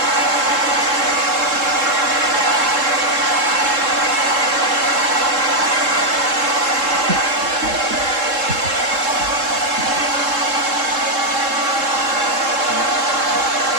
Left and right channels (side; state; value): left; late; 3.7 ms